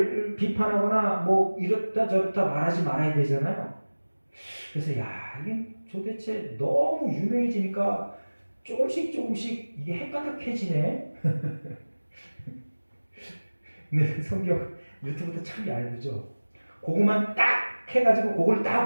비판하거나 뭐 이렇다 저렇다 말하지 말아야 되잖아요. 그래서 야, 이게 도대체 너무 유명해지니까 조금씩 이게 헷가닥해지네. 근데 성경 유튜브도 참 얇죠. 그거만 딱 해가지고 그걸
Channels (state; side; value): inverted; both; correlation -1.00